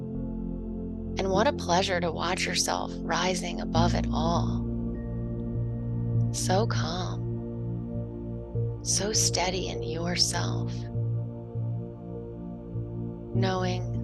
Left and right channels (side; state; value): both; identical; correlation 1.00